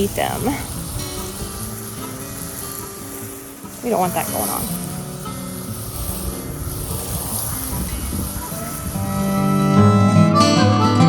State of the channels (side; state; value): both; identical; correlation 1.00